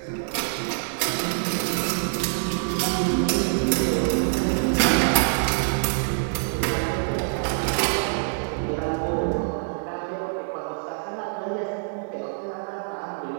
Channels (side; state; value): left; silent; 62 dB below the other